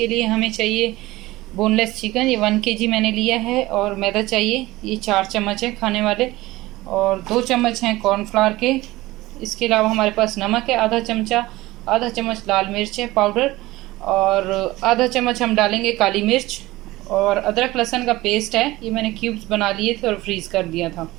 लिए हमें चाहिए बोनलेस चिकन, ये 1 kg मैंने लिया है। और मैदा चाहिए, ये 4 चम्मच है खाने वाले। और 2 चम्मच हैं कॉर्नफ्लावर के। इसके अलावा हमारे पास नमक है आधा चमचा, आधा चम्मच लाल मिर्च है पाउडर, और आधा चम्मच हम डालेंगे काली मिर्च। और अदरक लहसुन का पेस्ट है, ये मैंने क्यूब्स बना लिए थे और फ्रीज़ कर दिया था।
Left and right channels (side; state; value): left; quieter; 18.6 dB